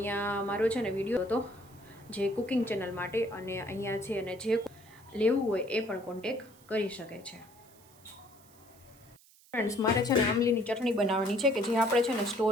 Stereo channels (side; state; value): right; noise; hiss, 26 dB below the sound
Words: મારો છે ને વિડીયો હતો જે કુકિંગ ચેનલ માટે, અને અહીંયા છે અને જે લેવું હોય એ પણ કોન્ટેક કરી શકે છે. ફ્રેન્ડ્સ મારે છે ને આંબલીની ચટણી બનાવવાની છે કે જે આપણે છે ને